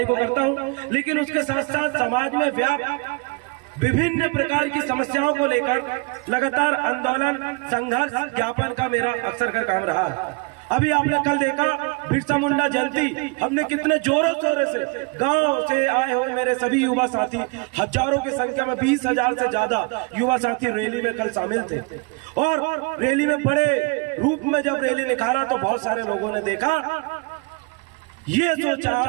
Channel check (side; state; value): left; quieter; 28.9 dB